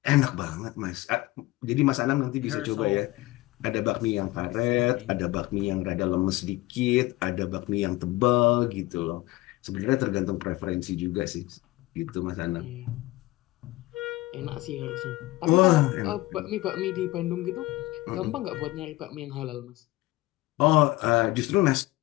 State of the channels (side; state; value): right; quieter; 19.3 dB